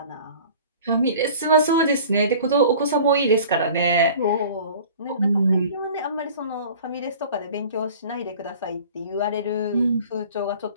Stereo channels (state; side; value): inverted; both; correlation -0.45